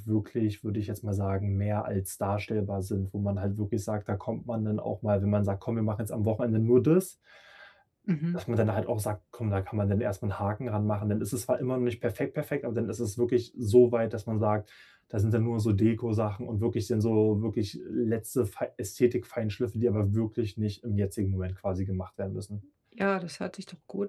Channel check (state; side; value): identical; both; correlation 1.00